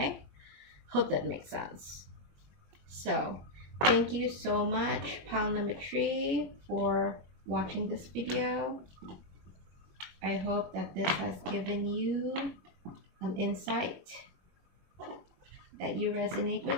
hope that makes sense. So thank you so much, pile number 3, for watching this video. I hope that this has given you an insight that you resonate with.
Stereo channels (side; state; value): left; late; 21 ms